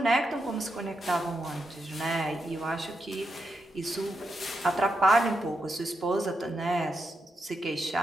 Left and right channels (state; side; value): normal; both; correlation 0.84